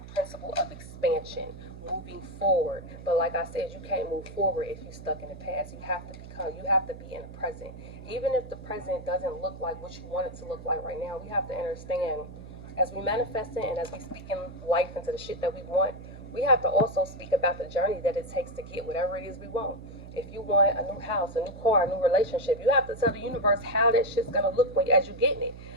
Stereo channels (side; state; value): right; noise; hum, 14 dB below the sound